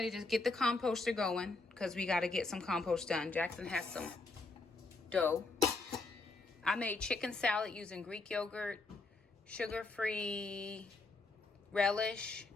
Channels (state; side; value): quieter; right; 3.5 dB